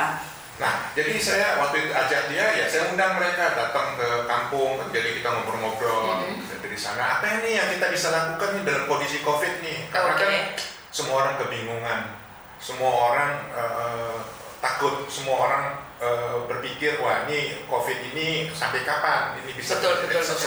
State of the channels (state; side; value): identical; both; correlation 1.00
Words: Nah, jadi saya waktu itu ajak dia, ya saya undang mereka datang ke kampung, jadi kita ngobrol-ngobrol dari sana. Apa ini yang kita bisa lakukan nih dalam kondisi COVID nih? Karena kan semua orang kebingungan, semua orang takut, semua orang berpikir, wah ini COVID ini sampai kapan? Ini bisa